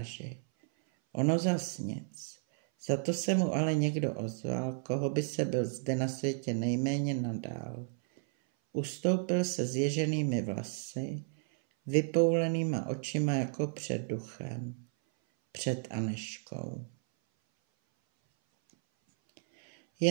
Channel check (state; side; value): silent; left; 56 dB below the other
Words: Ono zas nic. Za to se mu ale někdo ozval, koho by se byl zde na světě nejméně nadál. Ustoupil se zježenými vlasy, vypoulenýma očima jako před duchem, před Anežkou.